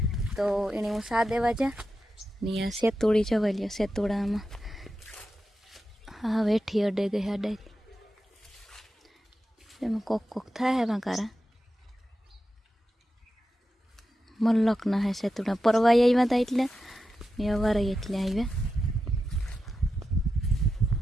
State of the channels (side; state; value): both; normal; correlation 0.90